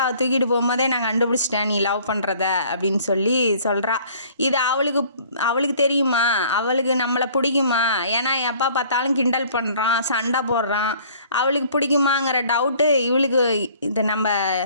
தூக்கிட்டு போகும்போதே நான் கண்டுபிடிச்சிட்டேன் நீ லவ் பண்ணுறத அப்படின்னு சொல்லி சொல்கிறா. இது அவளுக்கு தெரியுமா, அவளுக்கு நம்மளை பிடிக்குமா? ஏன்னா எப்போ பார்த்தாலும் கிண்டல் பண்ணுறான், சண்டை போடுறான். அவளுக்கு பிடிக்குமாங்கிற டவுட்டு இவளுக்கு இது நம்ம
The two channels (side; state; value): both; inverted; correlation -0.54